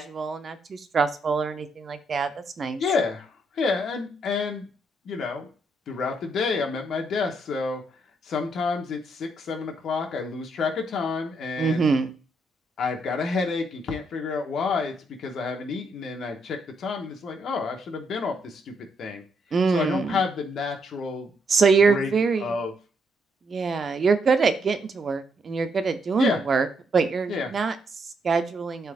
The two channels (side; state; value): both; normal; correlation 0.76